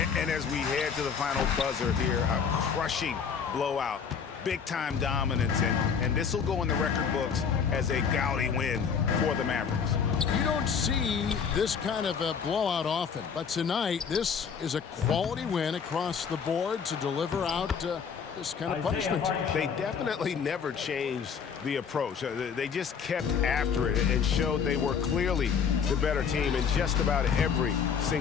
And as we head to the final buzzer here, a crushing blowout. Big-time dominance, and this will go in the record books as a gaudy win for the Mavericks. You don't see this kind of a blowout often, but tonight this is a quality win across the board to deliver out this kind of punishment. They definitely never changed the approach. They just kept after it and showed they were clearly the better team in just about every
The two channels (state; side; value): quieter; right; 6.6 dB